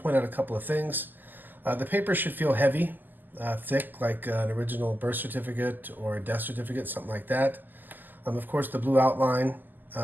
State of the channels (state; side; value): late; left; 0.088 ms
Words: point out a couple of things. The paper should feel heavy. Thick, like an original birth certificate or a death certificate, something like that. Of course, the blue outline.